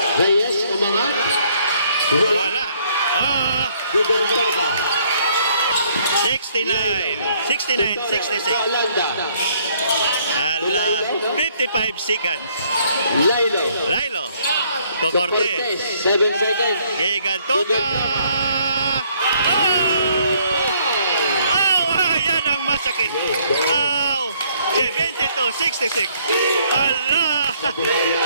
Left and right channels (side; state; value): both; inverted; correlation -0.65